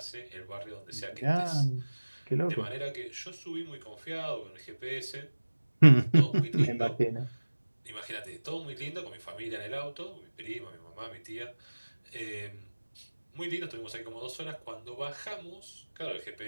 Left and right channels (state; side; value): inverted; both; correlation -1.00